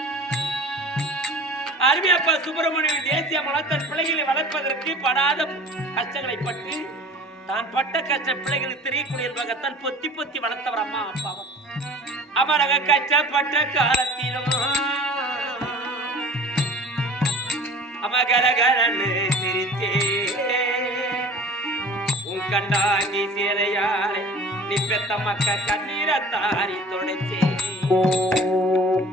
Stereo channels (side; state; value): both; normal; correlation 0.43